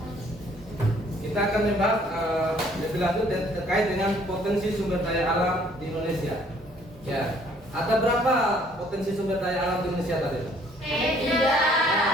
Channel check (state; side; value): normal; both; correlation 0.61